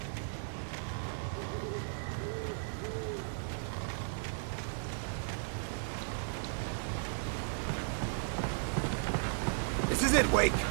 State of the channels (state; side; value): silent; left; digital silence